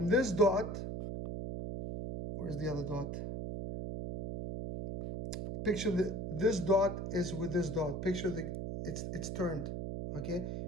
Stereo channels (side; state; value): right; noise; hum, 4 dB below the sound